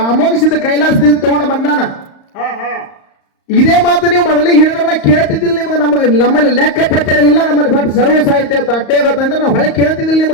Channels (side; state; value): right; late; 35 ms